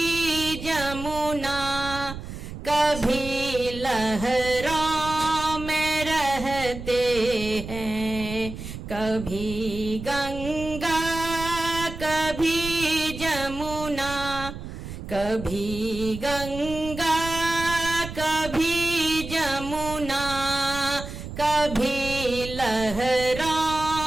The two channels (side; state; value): right; noise; rumble, 10 dB below the sound